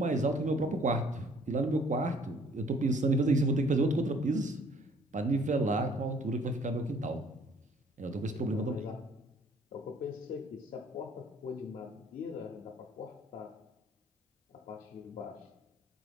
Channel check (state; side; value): normal; both; correlation 0.58